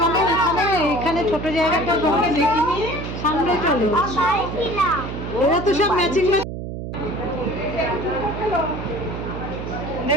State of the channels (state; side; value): noise; right; hum, 7 dB below the sound